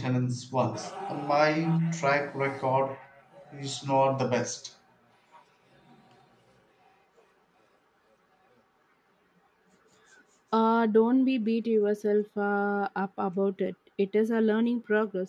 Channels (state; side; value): identical; both; correlation 1.00